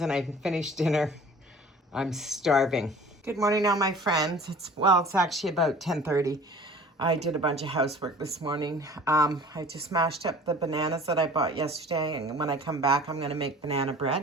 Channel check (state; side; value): normal; both; correlation 0.46